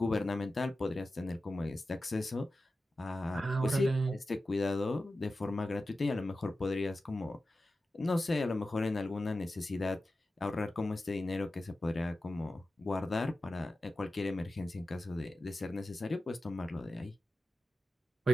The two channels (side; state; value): both; normal; correlation 0.93